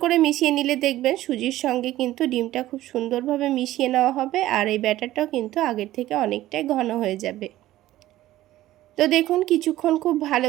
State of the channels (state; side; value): quieter; left; 15.0 dB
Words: করে মিশিয়ে নিলে দেখবেন সুজির সঙ্গে কিন্তু ডিমটা খুব সুন্দরভাবে মিশিয়ে নেওয়া হবে, আর এই ব্যাটারটাও কিন্তু আগের থেকে অনেকটাই ঘন হয়ে যাবে। তো দেখুন কিছুক্ষণ খুব